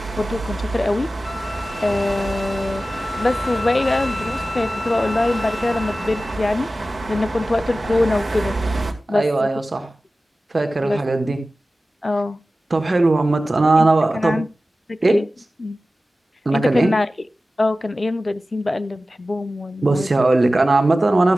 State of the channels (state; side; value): normal; both; correlation 0.95